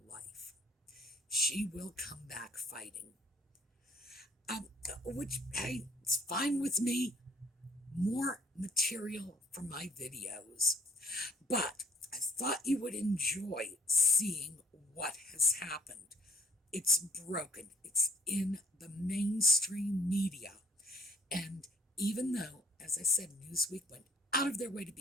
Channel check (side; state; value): both; normal; correlation 0.61